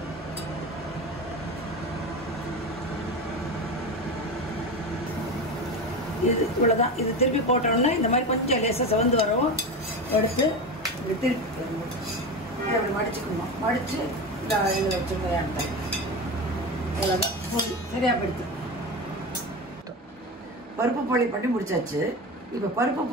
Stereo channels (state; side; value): normal; both; correlation 0.23